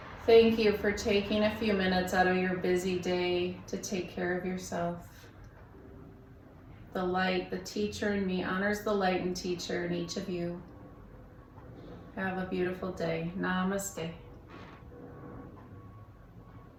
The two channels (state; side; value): identical; both; correlation 1.00